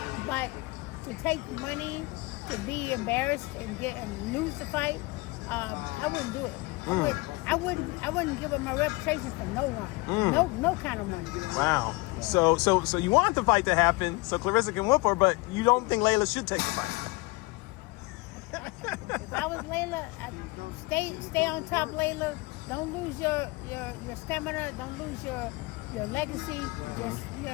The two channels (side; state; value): right; quieter; 24.4 dB